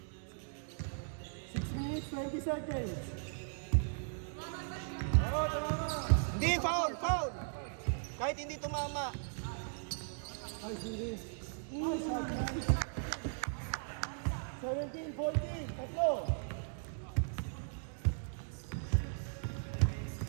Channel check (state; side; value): silent; left; digital silence